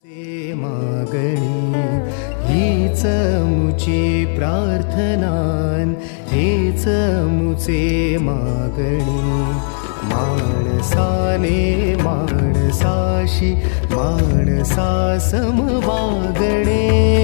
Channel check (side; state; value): right; silent; 68 dB below the other